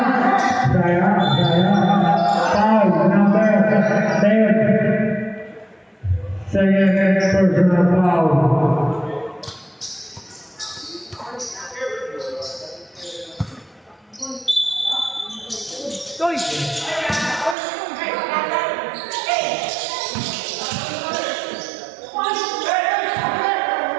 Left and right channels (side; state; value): left; drops out; at 17.6 s